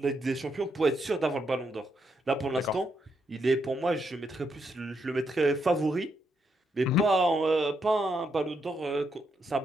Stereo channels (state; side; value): normal; both; correlation 0.79